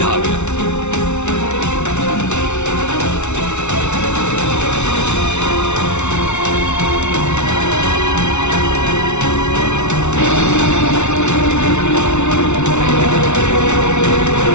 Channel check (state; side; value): late; right; 0.82 ms